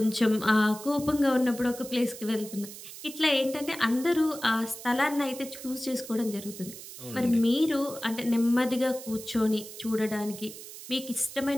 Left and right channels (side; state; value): right; noise; hiss, 13 dB below the sound